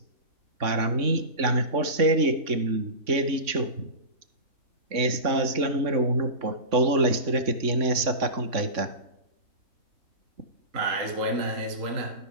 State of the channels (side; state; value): left; late; 3.6 ms